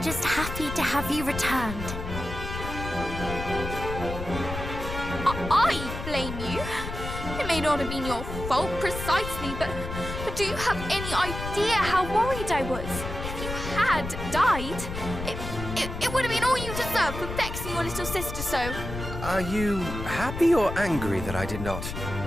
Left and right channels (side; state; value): left; noise; rumble, 7 dB below the sound